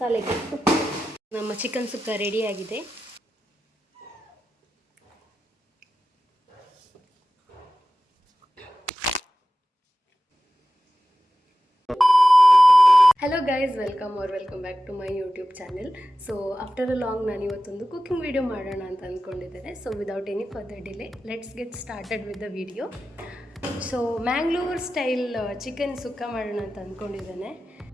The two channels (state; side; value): normal; both; correlation 0.94